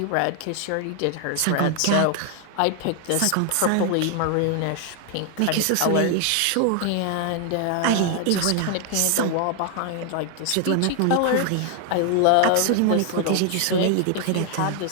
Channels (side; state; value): both; different; correlation 0.00